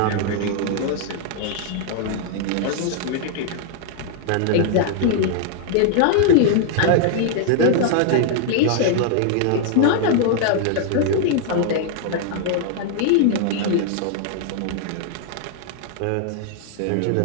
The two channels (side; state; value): both; different; correlation 0.00